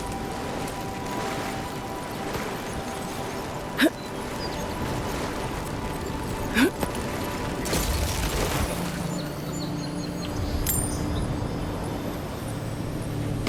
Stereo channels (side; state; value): both; identical; correlation 1.00